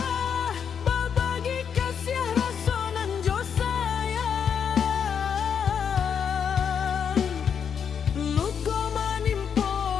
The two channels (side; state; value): right; quieter; 7.3 dB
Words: babagi kasih rasonan jo sayang, luko manimpo